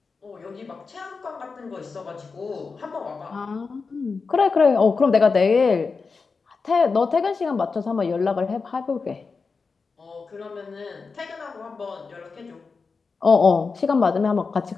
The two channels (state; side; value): quieter; right; 4.7 dB